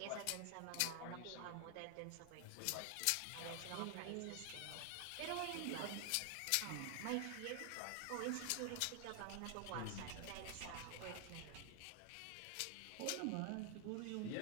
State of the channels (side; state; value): both; different; correlation 0.00